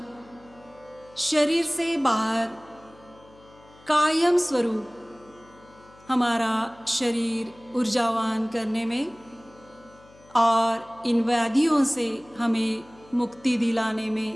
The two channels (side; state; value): left; noise; hum, 26 dB below the sound